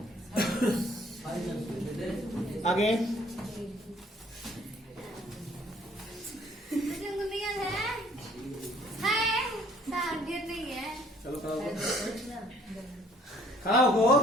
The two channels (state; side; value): normal; both; correlation 0.60